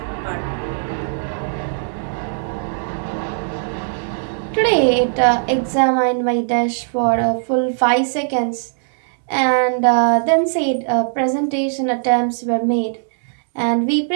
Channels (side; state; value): left; silent; digital silence